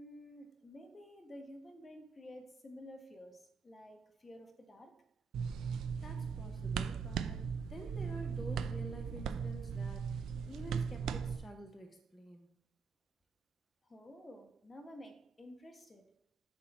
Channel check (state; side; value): quieter; left; 5.4 dB